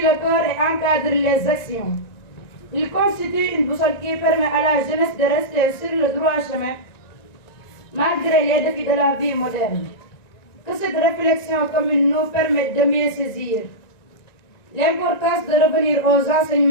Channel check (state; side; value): late; right; 1.9 ms